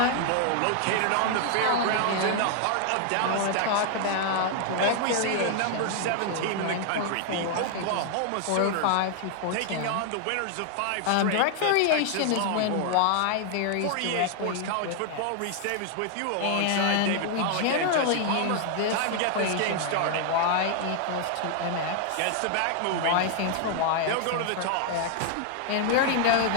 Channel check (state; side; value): different; both; correlation 0.00